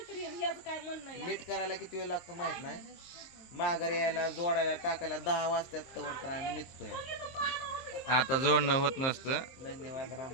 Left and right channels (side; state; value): right; late; 23 ms